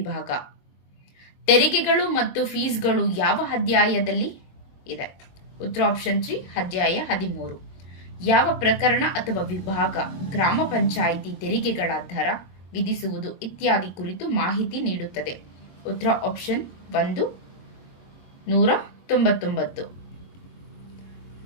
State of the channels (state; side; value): late; right; 22 ms